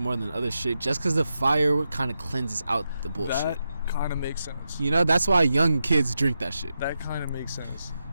than other shit just because the fire kind of cleanses out the bullshit. That kind of makes sense. You know, that's why young kids drink that shit. That kind of makes sense.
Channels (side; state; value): both; inverted; correlation -0.88